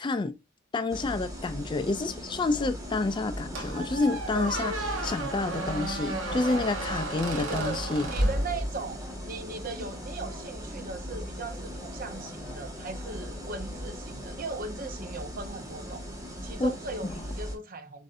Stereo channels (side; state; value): both; normal; correlation 0.55